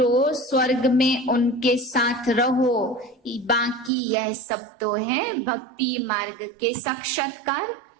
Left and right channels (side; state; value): left; drops out; at 3.9 s